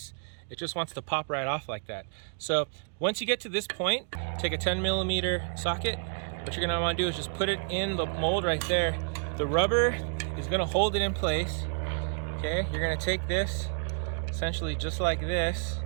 it just wants to pop right off like that. So once you get to this point, take a 10mm socket. What you're gonna wanna do is just put it in the mold right there. The rubber is gonna hold it in place. Okay, you're gonna take this essentially just like this.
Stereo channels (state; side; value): silent; left; 58 dB below the other